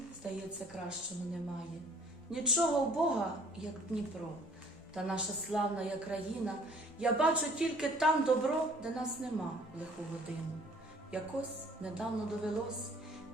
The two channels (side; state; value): both; normal; correlation 0.56